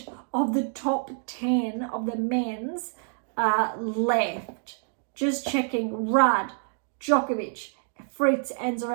of the top 10 of the men's left. Just checking. Rudd, Djokovic, Fritz, and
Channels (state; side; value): silent; left; 60 dB below the other